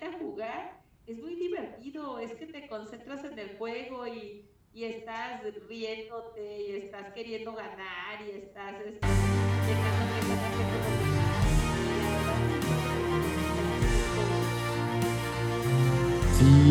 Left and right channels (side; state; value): both; identical; correlation 1.00